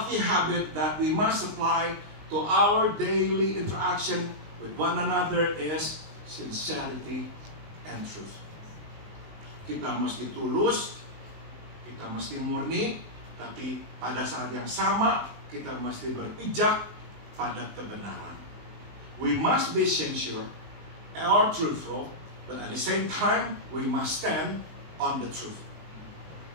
habit that we must apply to our daily interaction with one another is sincerity and truth. Kita mesti tulus, kita mesti murni, tapi pada saat yang sama kita mesti berpijak pada kebenaran. We must be sincere or truthful, but at the same time we must stand on the truth.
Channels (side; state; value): left; late; 19 ms